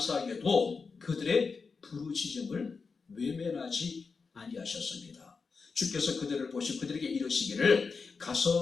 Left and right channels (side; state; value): right; quieter; 4.8 dB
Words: 그들의 부르짖음을 외면하지 아니하셨습니다. 주께서 그들을 보시고 그들에게 이르시기를